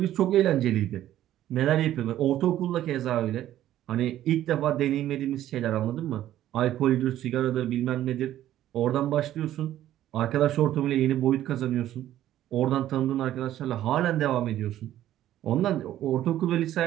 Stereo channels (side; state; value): left; quieter; 12.8 dB